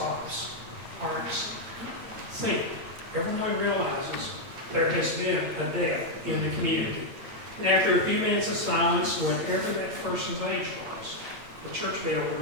Hearts sink. Everyone realizes there has been a death in the community. And after a few minutes of silence, whatever that person's age was, the church bell would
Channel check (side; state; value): left; late; 8.8 ms